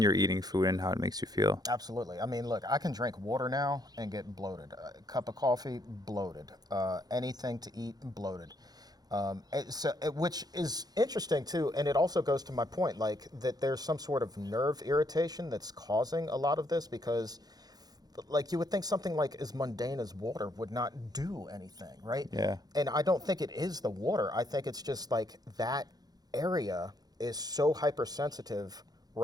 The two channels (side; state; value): left; late; 0.19 ms